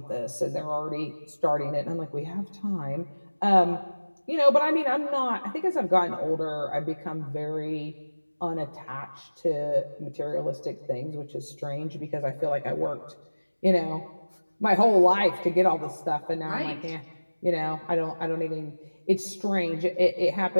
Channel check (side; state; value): both; inverted; correlation -1.00